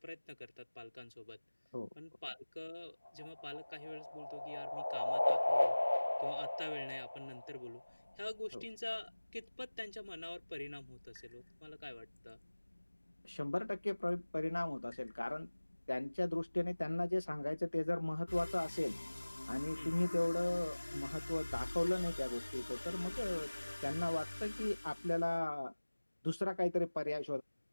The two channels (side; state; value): both; inverted; correlation -1.00